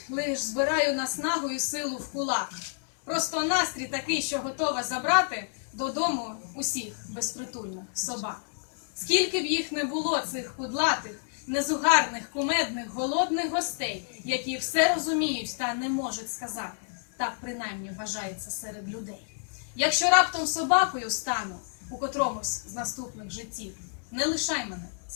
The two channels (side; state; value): right; silent; 58 dB below the other